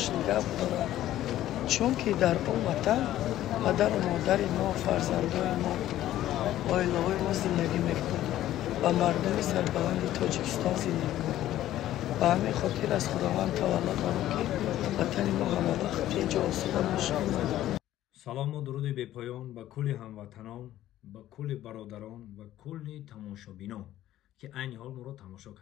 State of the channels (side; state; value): right; quieter; 13.4 dB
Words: نگه داره، چون که در اون وطن پدر و مادر ما، فرزندان ما، عائله ما زندگی میکنند و مردم سربلند تاجیکستان زندگی میکنند. به همین خاطر از خداوند تولد دارم که وطن ما همه وقت اینجا آسوده باشه. سلام و درود بی پایان به کل هموطنان، به کل برادران و کل تماشابینان که عین حال ما رو تماشا